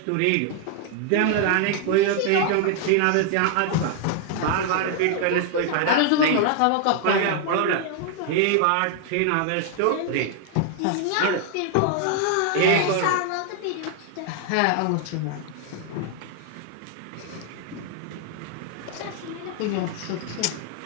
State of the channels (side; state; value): both; different; correlation 0.00